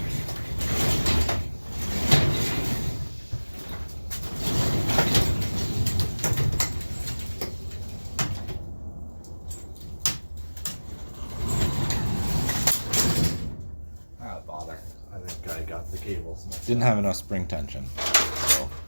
Bother. I think I got the cables. Didn't have enough spring tension, so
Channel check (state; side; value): inverted; both; correlation -1.00